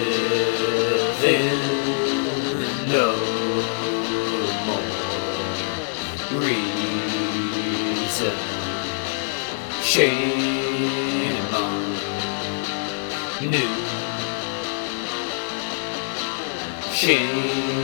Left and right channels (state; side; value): silent; right; digital silence